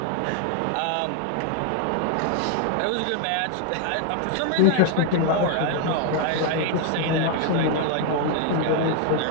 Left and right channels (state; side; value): different; both; correlation 0.00